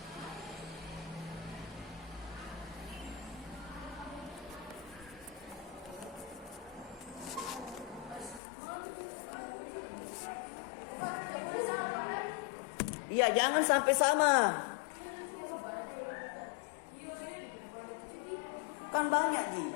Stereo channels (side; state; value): right; drops out; at 8.4 s